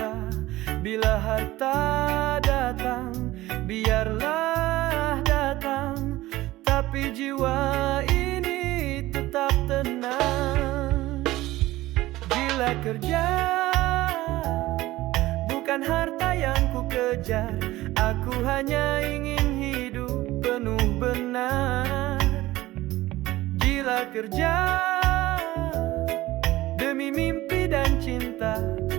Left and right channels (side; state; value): left; quieter; 17.3 dB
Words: Bila harta datang, biarlah datang, tapi jiwa ini tetap tenang. Gila kerja, bukan harta yang ku kejar. Aku hanya ingin hidup penuh benar. Gila kerja demi mimpi dan cinta,